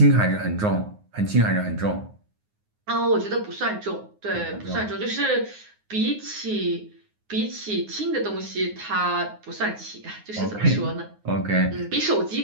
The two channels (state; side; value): late; left; 9.6 ms